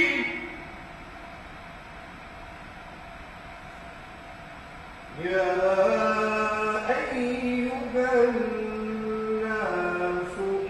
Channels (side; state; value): both; identical; correlation 1.00